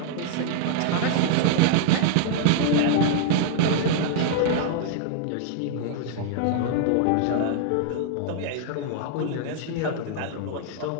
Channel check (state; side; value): different; both; correlation -0.01